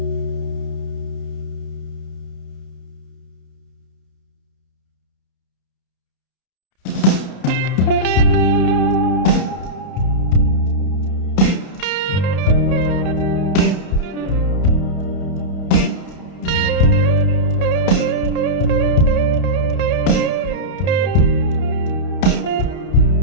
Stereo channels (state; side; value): late; right; 31 ms